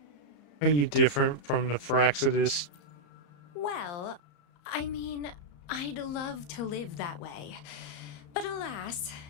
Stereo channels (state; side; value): late; right; 34 ms